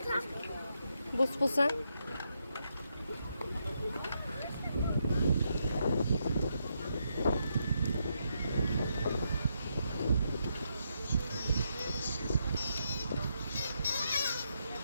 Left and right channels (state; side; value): inverted; both; correlation -0.80